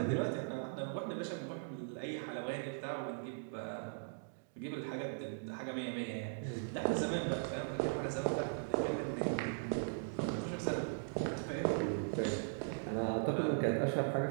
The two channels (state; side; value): silent; left; digital silence